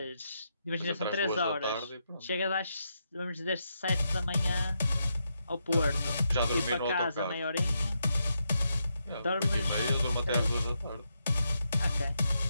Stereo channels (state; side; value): inverted; both; correlation -0.82